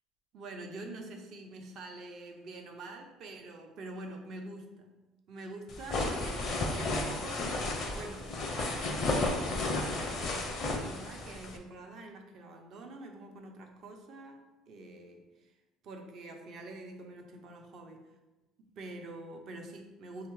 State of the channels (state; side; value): normal; both; correlation 0.57